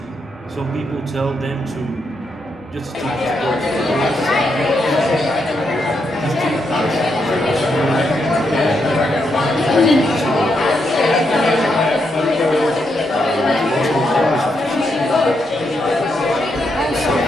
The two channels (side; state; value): both; normal; correlation 0.80